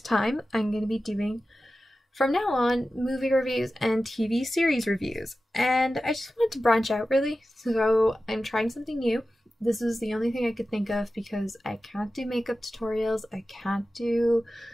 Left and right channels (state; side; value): normal; both; correlation 0.94